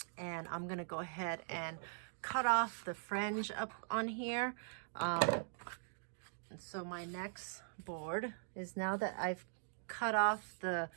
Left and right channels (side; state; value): left; silent; digital silence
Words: I'm going to go ahead and cut off the fringe up on here. And so my next board is, now that I've cut off the